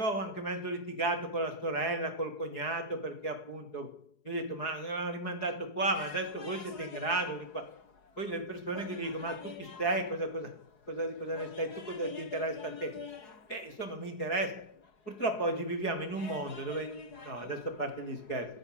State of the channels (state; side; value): late; right; 4.7 ms